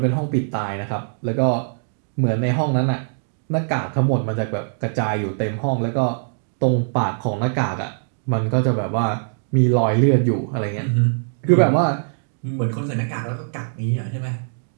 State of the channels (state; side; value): silent; left; digital silence